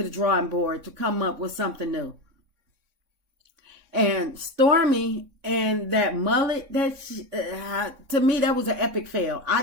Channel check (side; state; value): left; late; 3.6 ms